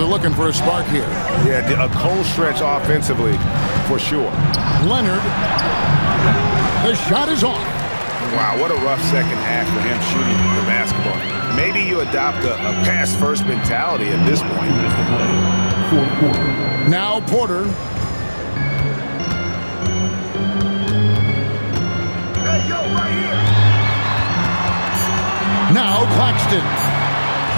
looking for a spark here. Yeah, a cold stretch offensively, for sure. Leonard. The shot is off. Wow, what a rough second half for him shooting the basketball. Maybe you adopt a pass-first mentality at this point. Now Porter. Hey, yo, right here. Now Claxton.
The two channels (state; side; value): inverted; both; correlation -1.00